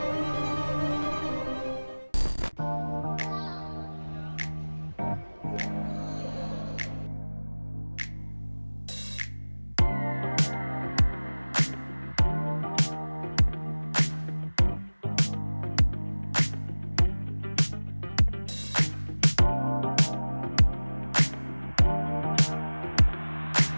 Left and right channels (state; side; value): inverted; both; correlation -1.00